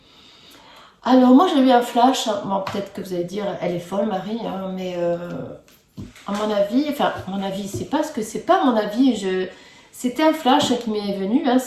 Alors moi j'ai eu un flash. Bon, peut-être que vous allez dire elle est folle Marie, hein, mais à mon avis, enfin à mon avis, c'est pas ce que c'est pas mon avis. C'était un flash qui m'est venu. Hein,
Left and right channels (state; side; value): identical; both; correlation 1.00